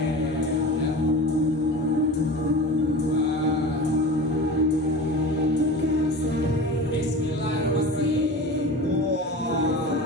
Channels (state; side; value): normal; both; correlation 0.33